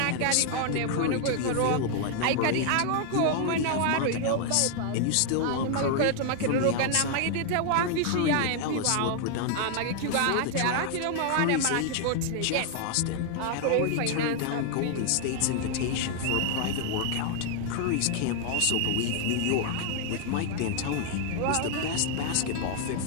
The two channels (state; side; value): different; both; correlation 0.00